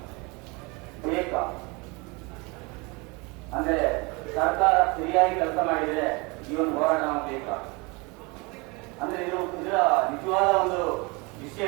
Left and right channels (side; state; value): left; quieter; 27.7 dB